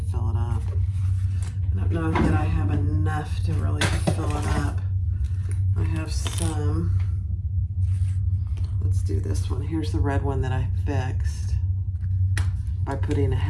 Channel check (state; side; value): identical; both; correlation 1.00